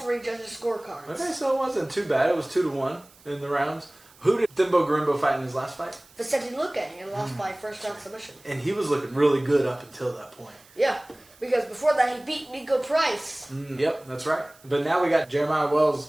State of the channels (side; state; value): right; noise; hiss, 27 dB below the sound